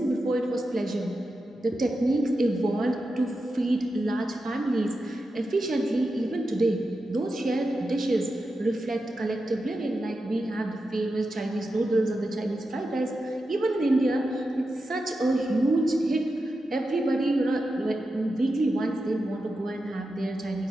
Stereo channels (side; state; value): both; normal; correlation 0.90